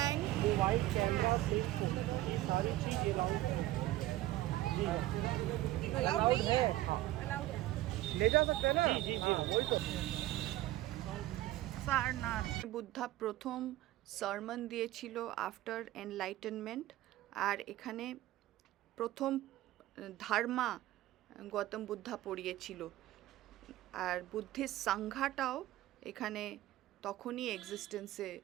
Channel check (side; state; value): left; quieter; 15.9 dB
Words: वो white camera plate ये सारी चीज allowed है ले जा सकते हैं ना जी वही तो সারনাথ বুদ্ধা প্রথম সারমন দিয়েছিল আফটার এনলাইটেনমেন্ট, আর এখানে প্রথম ধর্মা গৌতম বুদ্ধা পড়িয়েছিল, আর বুদ্ধিস্ট সংঘাটাও এখানে তখনই এক্সিস্টেন্সে